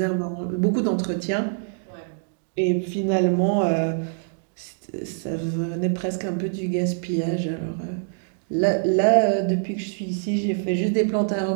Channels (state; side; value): silent; left; digital silence